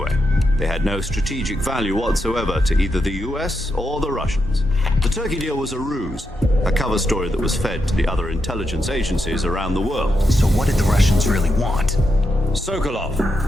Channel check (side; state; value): both; normal; correlation 0.84